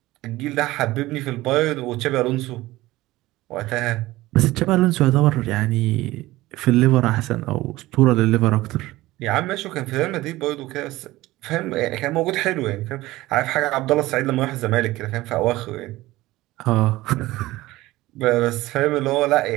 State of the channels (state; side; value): quieter; left; 18.0 dB